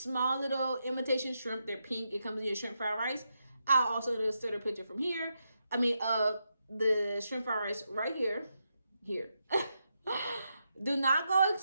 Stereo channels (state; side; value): inverted; both; correlation -0.84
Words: little imitation shrimp. They're pink. It comes in your shrimp fried rice. I'll also insert a picture from here. The shrimp fried rice right here. Do not go